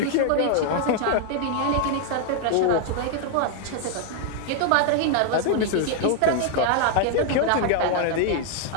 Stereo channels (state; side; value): different; both; correlation 0.00